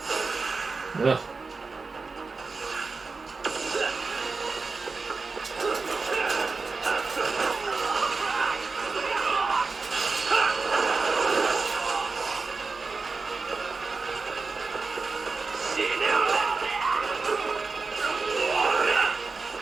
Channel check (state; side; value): quieter; left; 4.2 dB